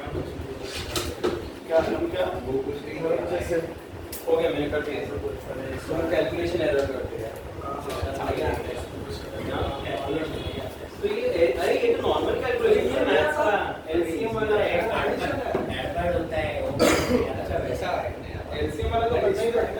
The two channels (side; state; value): both; identical; correlation 1.00